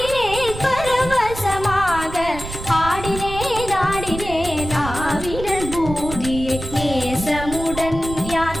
பரவசமாக ஆடினேன் ஆடினேன் ஆவினன் பூதியை நேசமுடன் யார்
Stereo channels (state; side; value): noise; right; rumble, 10 dB below the sound